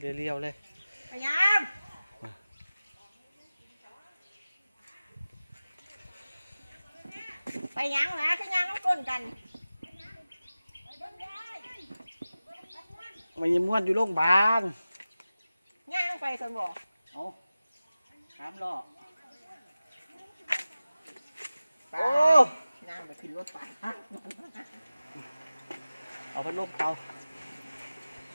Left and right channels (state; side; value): inverted; both; correlation -0.96